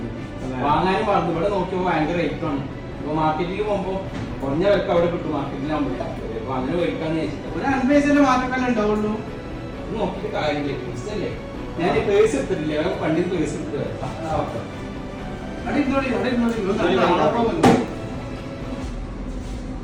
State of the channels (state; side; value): identical; both; correlation 1.00